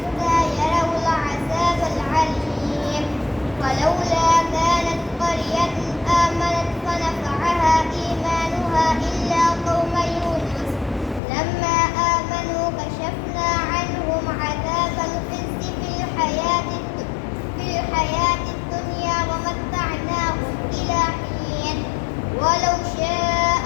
يروا العذاب العليم فلولا كانت قرية آمنت فنفعها إيمانها إلا قوم يونس لما آمنوا كشفنا عنهم عذاب الخزي في الحياة الدنيا ومتعناهم إلى حين ولو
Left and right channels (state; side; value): drops out; right; at 11.2 s